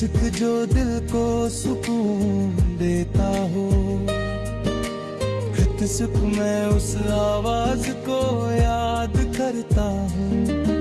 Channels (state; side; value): identical; both; correlation 1.00